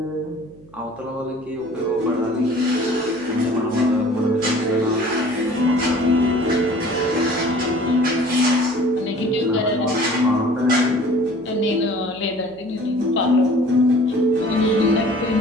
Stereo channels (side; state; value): right; noise; hum, 24 dB below the sound